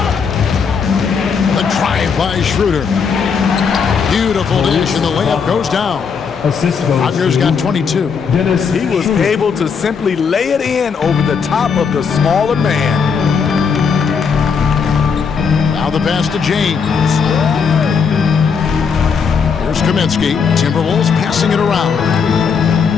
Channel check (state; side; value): quieter; right; 6.0 dB